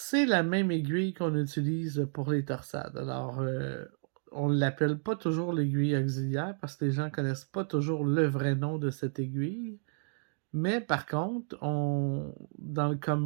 la même aiguille qu'on utilise pour les torsades. Alors, on ne l'appelle pas toujours l'aiguille auxiliaire parce que les gens ne connaissent pas toujours le vrai nom de cette aiguille. Mais par contre, dans le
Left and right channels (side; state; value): left; silent; digital silence